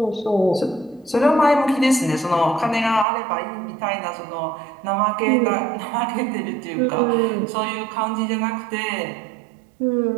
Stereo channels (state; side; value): drops out; left; at 3.1 s